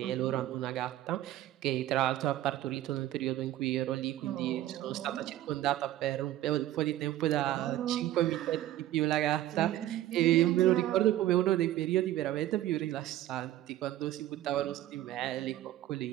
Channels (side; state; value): left; quieter; 14.1 dB